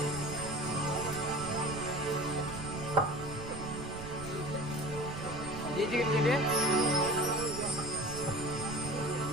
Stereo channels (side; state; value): right; noise; rumble, 10 dB below the sound